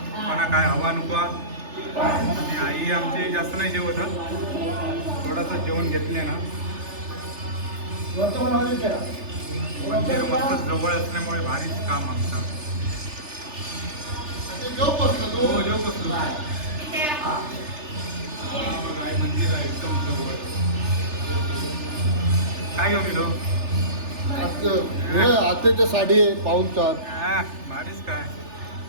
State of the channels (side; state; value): left; late; 3.4 ms